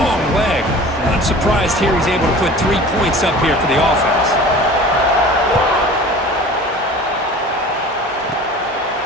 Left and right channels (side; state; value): both; normal; correlation 0.41